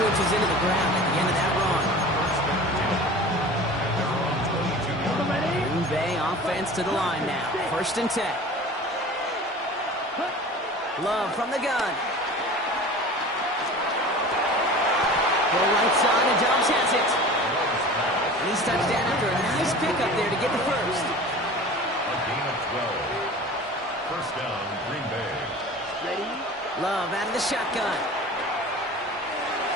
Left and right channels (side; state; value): both; normal; correlation 0.39